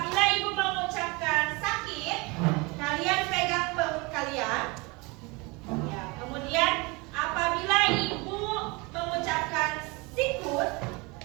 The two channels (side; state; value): left; quieter; 26.7 dB